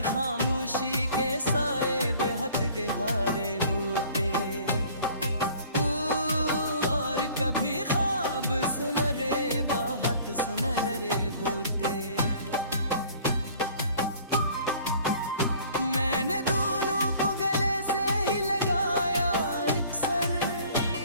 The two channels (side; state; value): both; inverted; correlation -0.52